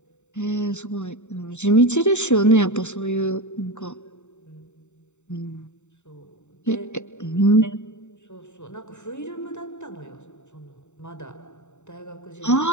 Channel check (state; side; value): late; right; 0.84 ms